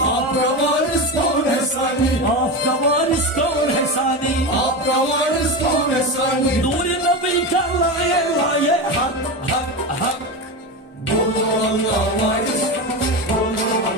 आपका वारिस कौन है सानी, Afka varis kaun hai sani. आपका वारिस कौन है सानी। Nuri nabi ka laye laye hak hak hak. बोलो अल्लाह वारिस, बोलो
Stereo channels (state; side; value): normal; both; correlation 0.20